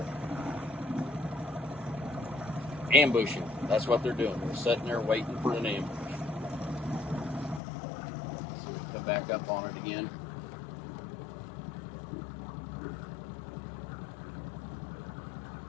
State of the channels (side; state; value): right; drops out; at 7.6 s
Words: Ambushing. That's what they're doing. They're sitting there waiting for an ambush. So come back up on it again.